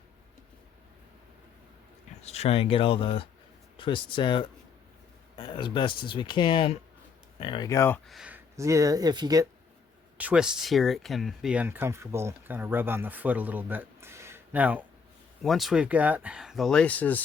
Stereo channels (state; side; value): quieter; right; 5.8 dB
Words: let's try and get all the twists out as best as we can. There we go. If you get twists here, it can be uncomfortable, kind of rub on the foot a little bit. Now, once we've got the